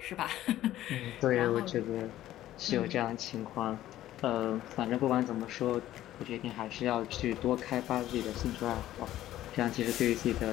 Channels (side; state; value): right; quieter; 13.8 dB